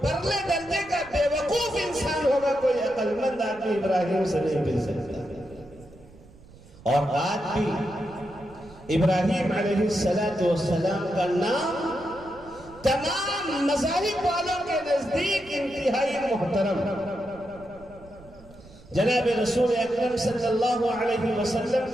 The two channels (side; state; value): right; noise; rumble, 22 dB below the sound